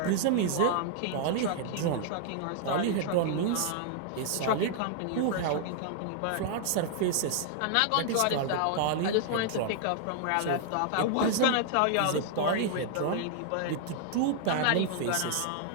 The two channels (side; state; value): both; different; correlation -0.01